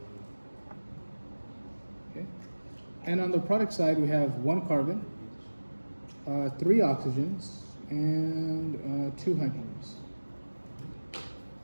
Okay. And on the product side, we have 1 carbon, 3 oxygens, and 2 hydrogens.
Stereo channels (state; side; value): inverted; both; correlation -1.00